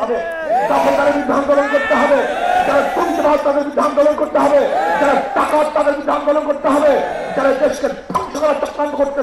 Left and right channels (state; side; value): identical; both; correlation 1.00